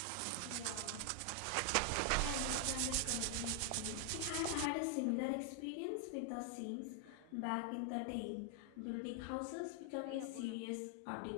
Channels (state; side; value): different; both; correlation 0.00